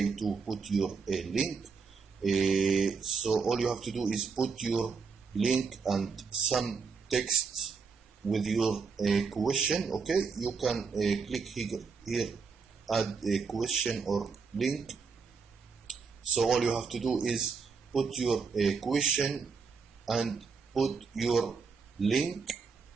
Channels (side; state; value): left; quieter; 5.2 dB